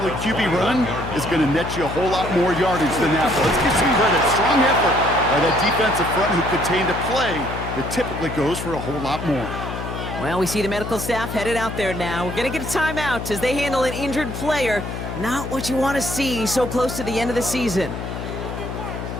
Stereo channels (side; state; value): left; noise; hum, 7 dB below the sound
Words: QB run is going to net you a whole lot more yardage than that. But let's give some credit. Strong effort by that defensive front who contained a play that typically goes for a whole lot more. Well, we see the medical staff headed out there now. We're going to get a timeout as they handle an injured player. Not what you want to see so close to the end of the season.